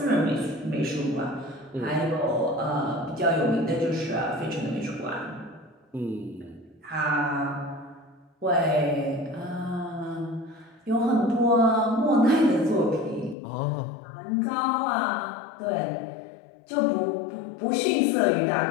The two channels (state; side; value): drops out; right; at 13.4 s